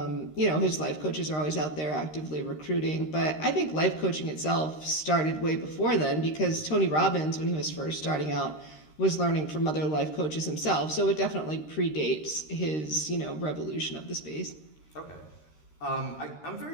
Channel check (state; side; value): late; right; 13 ms